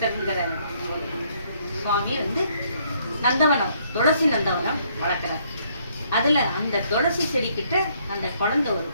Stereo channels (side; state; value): both; inverted; correlation -0.68